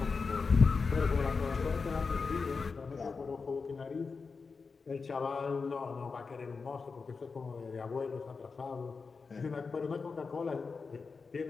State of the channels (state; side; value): quieter; right; 4.7 dB